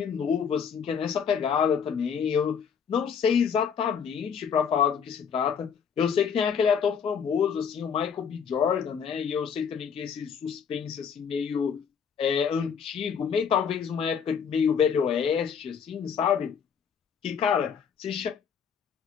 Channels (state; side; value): quieter; right; 7.0 dB